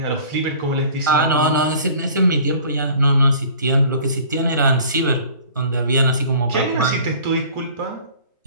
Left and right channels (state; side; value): inverted; both; correlation -0.48